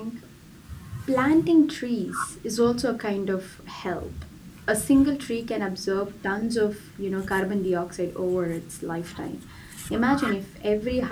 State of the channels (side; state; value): both; identical; correlation 1.00